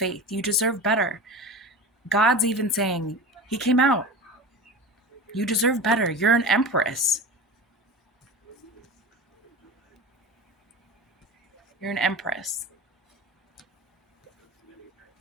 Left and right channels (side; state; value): both; normal; correlation 0.30